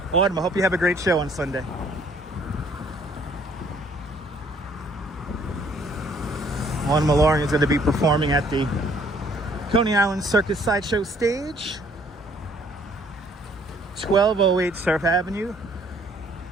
Autumn, I hope you have a great show on Sunday. Autumn Mallory is going to be performing at the Coney Island Circus Sideshow stage, 1208 Surf Avenue.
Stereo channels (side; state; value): both; normal; correlation 0.61